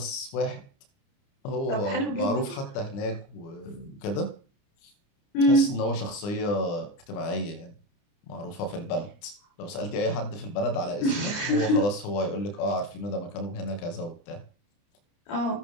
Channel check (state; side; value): late; right; 29 ms